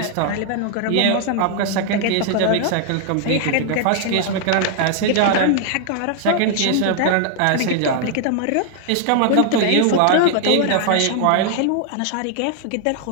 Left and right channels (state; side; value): different; both; correlation 0.00